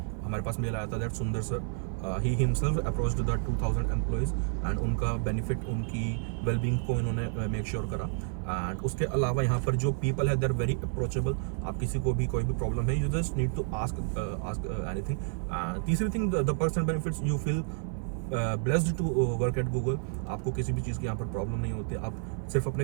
हमारे पास मेल आया था दैट सुंदर sir he himself approached the 2000 employees and उनका बेनिफिट, उनकी वेलबींग को इन्होंने मेक श्योर करा। एंड उसके अलावा यहाँ पर जो पीपल है दे आर वेरी अप्रोचेबल। आप किसी को भी कोई भी प्रॉब्लम है, you just need to ask anything. तीसरी thing, the perks and benefits, you feel blessed to work at Google. आपको किसी भी चीज़ की यहाँ पर प्रॉब्लम नहीं होती, आप सिर्फ अपने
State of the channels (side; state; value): left; silent; 57 dB below the other